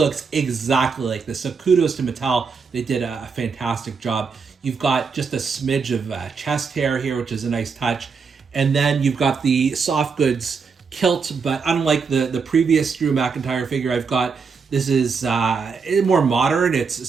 exactly like this. So kudos to Mattel. They did a fantastic job. You've got just a smidge of chest hair here, which is a nice touch. And then you've got the soft goods kilt, but unlike the previous Drew McIntyre figure I've got, this is more modern. It's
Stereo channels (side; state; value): left; quieter; 5.3 dB